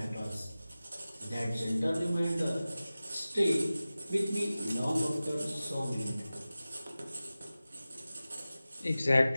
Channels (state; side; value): inverted; both; correlation -0.96